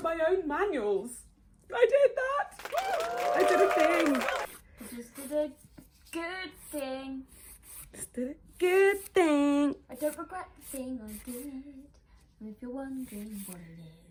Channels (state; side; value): identical; both; correlation 1.00